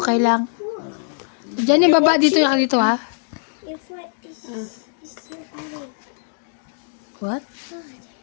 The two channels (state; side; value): silent; right; digital silence